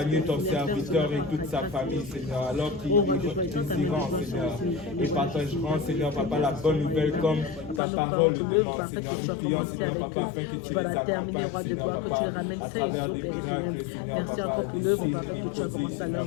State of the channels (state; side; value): drops out; right; at 7.8 s